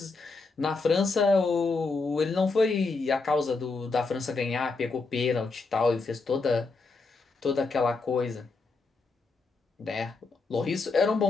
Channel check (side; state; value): right; quieter; 4.0 dB